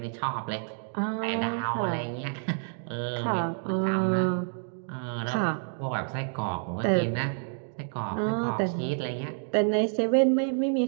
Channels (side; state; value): left; silent; 59 dB below the other